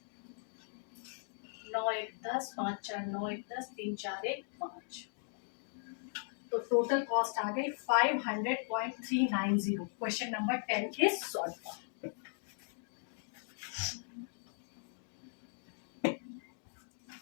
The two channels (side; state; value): right; silent; digital silence